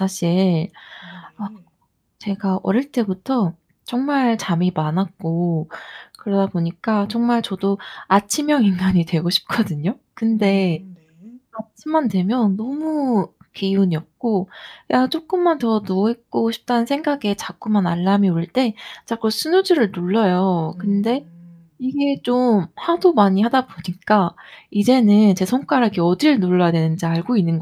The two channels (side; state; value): both; identical; correlation 1.00